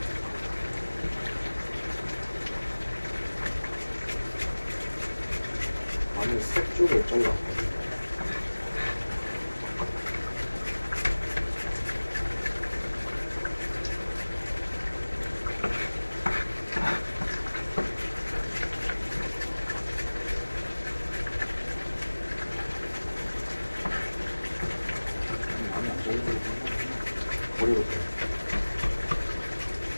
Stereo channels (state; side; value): inverted; both; correlation -1.00